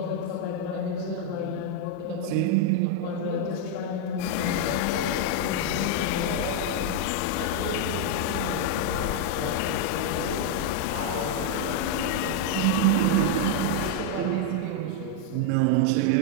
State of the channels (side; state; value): both; different; correlation 0.00